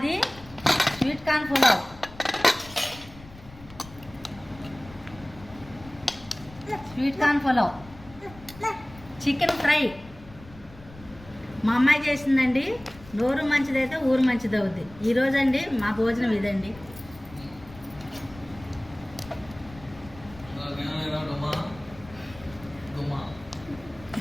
sweet corn pulao. Sweet corn pulao, chicken fry మా అమ్మాయి చేసిందండి. నోరు మంచిదైతే ఊరు మంచిది అవుద్ది. ఈరోజు అండి మా భోజనం ఇదండి.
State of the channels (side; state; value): left; noise; rumble, 19 dB below the sound